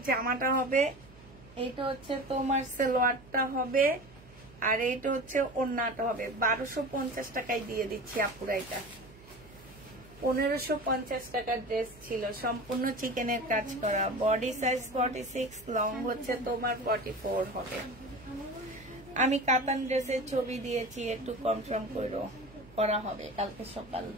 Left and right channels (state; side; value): noise; right; hum, 22 dB below the sound